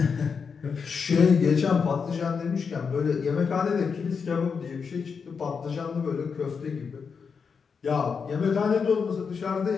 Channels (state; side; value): quieter; right; 5.8 dB